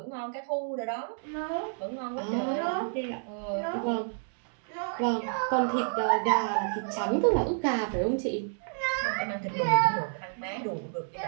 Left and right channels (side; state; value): left; silent; digital silence